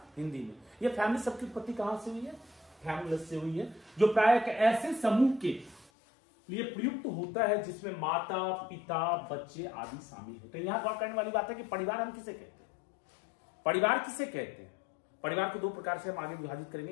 हिंदी में। यह फैमिली शब्द की उत्पत्ति कहां से हुई है? फैमुलस से हुई है, जो प्राय एक ऐसे समूह के लिए प्रयुक्त होता है जिसमें माता, पिता, बच्चे आदि शामिल होते हैं। यहां गौर करने वाली बात है कि परिवार हम किसे कहते हैं? परिवार किसे कहते हैं? परिवार को 2 प्रकार से हम आगे विभाजित करेंगे,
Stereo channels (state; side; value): drops out; right; at 5.9 s